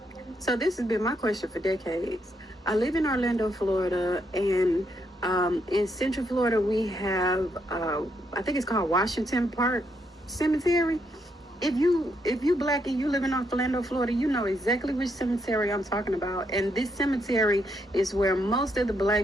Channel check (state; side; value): normal; both; correlation 0.77